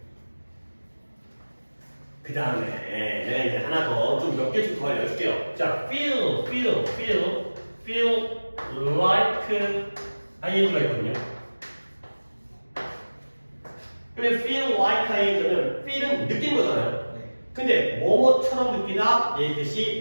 그 다음에 내가 이제 하나 더 좀 몇 개 좀 더 알려줄게요. 자, feel like ing가 있거든요. 근데 feel like ing는 feel은 느낀 거잖아요. 네. 근데 뭐뭐처럼 느끼다 얘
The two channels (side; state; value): both; inverted; correlation -1.00